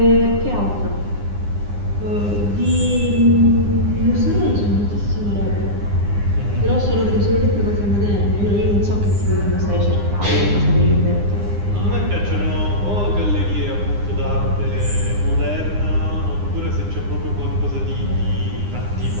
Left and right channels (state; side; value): late; left; 9.8 ms